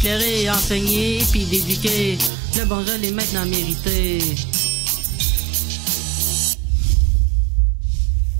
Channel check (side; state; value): left; drops out; at 2.3 s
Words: enseigné, puis éduqué, le bon je l'ai maintenant mérité.